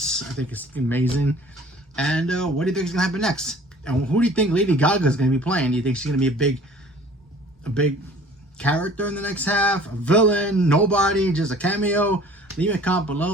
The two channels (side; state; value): both; normal; correlation 0.50